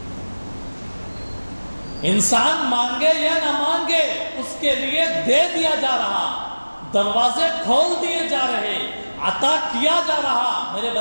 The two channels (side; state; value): both; inverted; correlation -1.00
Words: انسان مانگے یا نہ مانگے اس کے لیے دے دیا جا رہا، دروازے کھول دیے جا رہے، عطا کیا جا رہا۔ میرے